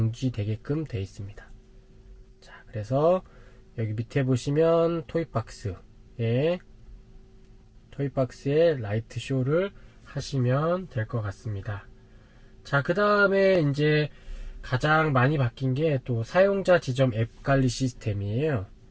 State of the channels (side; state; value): both; identical; correlation 1.00